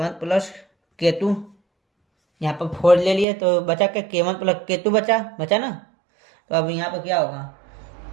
प्लस के 2, यहाँ पर 4 ले लिए तो बचा क्या, के 1 प्लस के 2 बचा ना। तो अब यहाँ पर क्या होगा,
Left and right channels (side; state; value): left; drops out; at 3.2 s